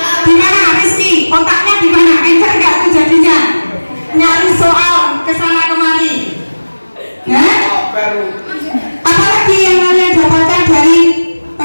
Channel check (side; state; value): both; inverted; correlation -1.00